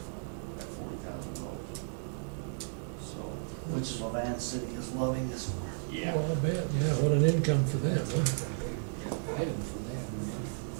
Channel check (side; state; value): left; silent; digital silence